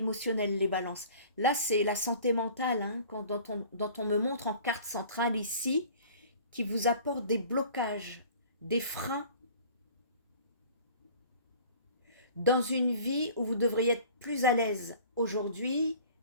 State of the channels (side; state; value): both; inverted; correlation -0.47